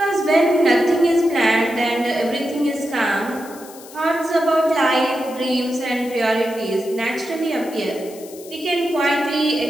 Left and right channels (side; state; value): left; noise; hiss, 19 dB below the sound